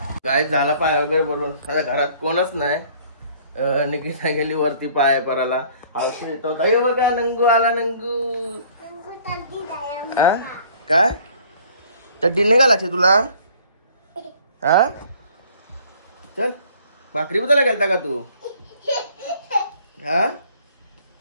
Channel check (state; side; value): inverted; both; correlation -0.55